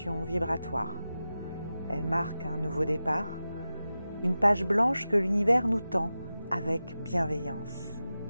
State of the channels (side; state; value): both; inverted; correlation -0.93